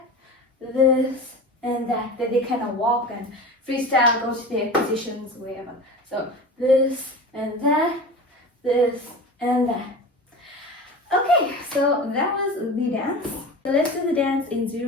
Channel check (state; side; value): normal; both; correlation 0.32